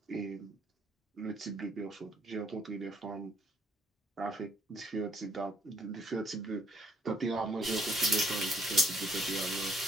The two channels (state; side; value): normal; both; correlation 0.67